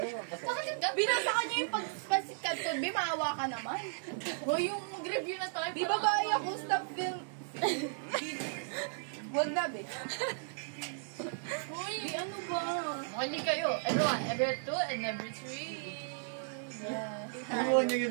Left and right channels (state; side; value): silent; left; digital silence